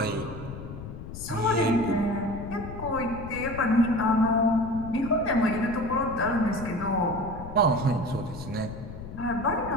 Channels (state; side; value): noise; left; rumble, 11 dB below the sound